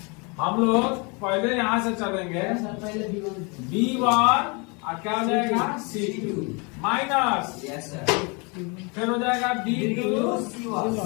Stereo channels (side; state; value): right; quieter; 31.2 dB